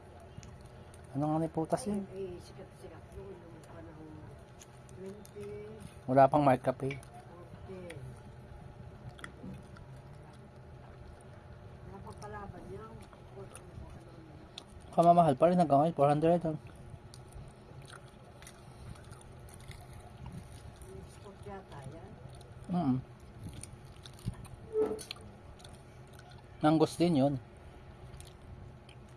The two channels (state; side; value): identical; both; correlation 1.00